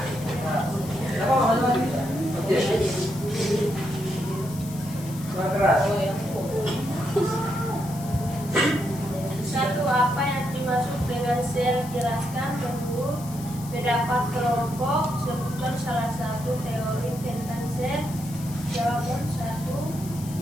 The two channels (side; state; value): left; noise; hiss, 16 dB below the sound